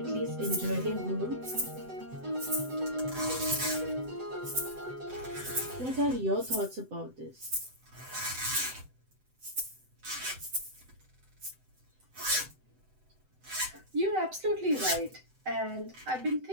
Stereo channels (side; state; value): left; late; 7.9 ms